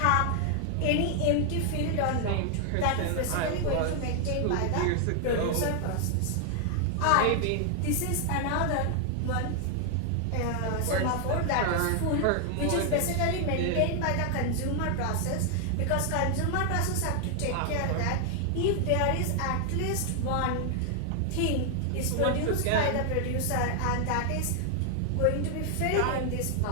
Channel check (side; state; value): both; different; correlation 0.00